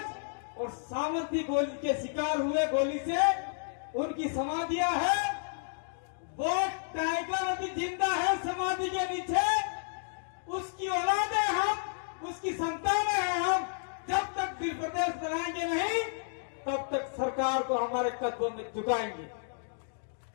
और सामंती गोली के शिकार हुए, गोली से उनकी समाधियां हैं। वो टाइगर अभी जिंदा है समाधि के नीचे। उसकी औलादे हम, उसकी संतानें हैं हम। जब तक भील प्रदेश बनाएंगे नहीं तब तक सरकार को हमारे कदमों में झुकाएंगे।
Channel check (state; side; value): silent; right; digital silence